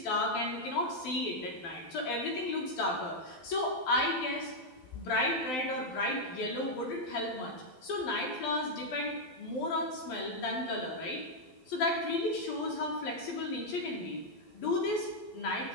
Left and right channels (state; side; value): late; right; 12 ms